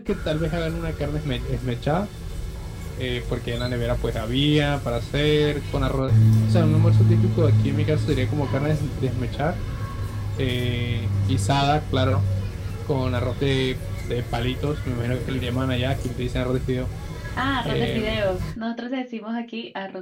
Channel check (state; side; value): identical; both; correlation 1.00